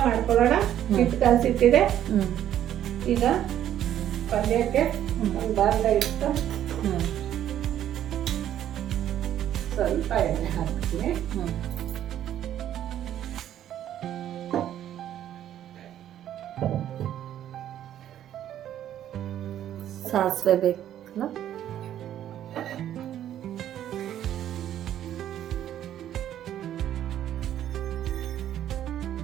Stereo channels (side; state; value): left; quieter; 11.2 dB